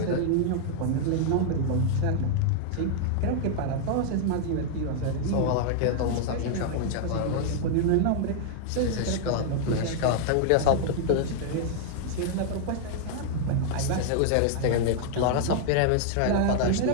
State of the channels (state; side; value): different; both; correlation -0.01